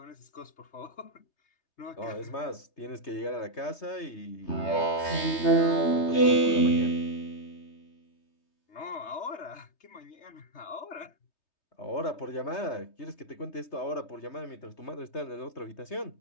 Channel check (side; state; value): right; late; 3.2 ms